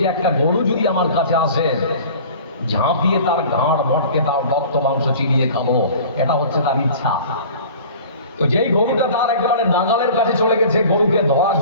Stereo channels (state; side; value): inverted; both; correlation -0.43